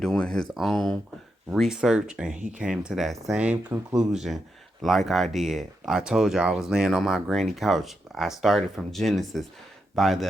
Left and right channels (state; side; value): normal; both; correlation 0.84